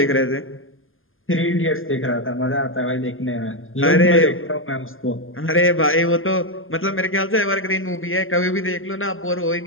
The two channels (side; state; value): right; late; 0.59 ms